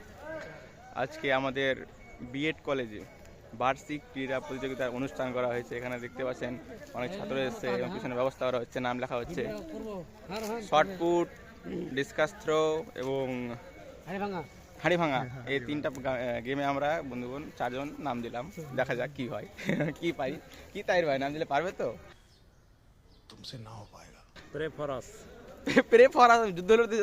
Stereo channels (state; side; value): identical; both; correlation 1.00